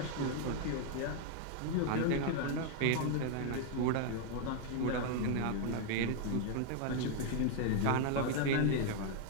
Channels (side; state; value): both; different; correlation 0.00